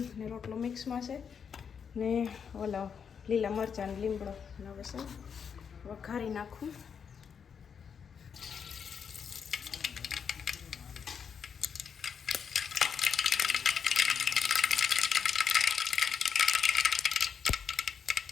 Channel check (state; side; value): quieter; right; 6.9 dB